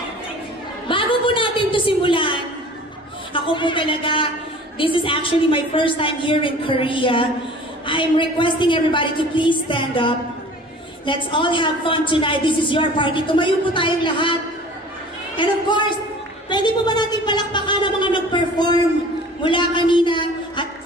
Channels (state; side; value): normal; both; correlation 0.45